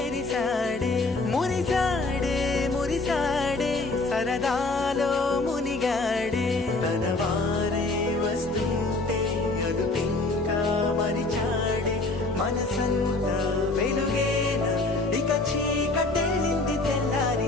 మురిసాడే మురిసాడే సరదాలో మునిగాడే తనవారే వస్తుంటే అదుపింకా మరిచాడే మనసంతా వెలుగేన ఇక చీకటెళ్ళింది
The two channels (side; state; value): right; quieter; 3.2 dB